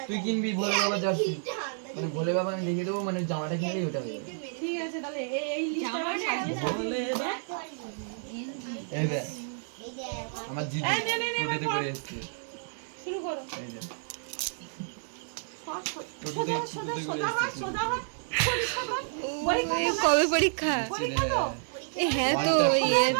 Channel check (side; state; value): left; silent; digital silence